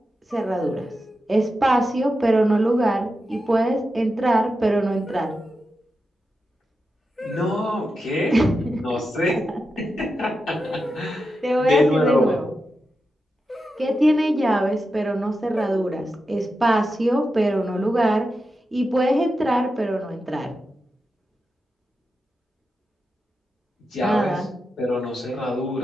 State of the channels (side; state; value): both; normal; correlation 0.89